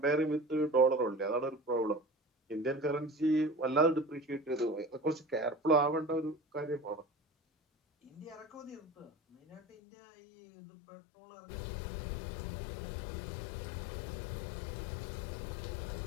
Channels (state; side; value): drops out; right; at 9.6 s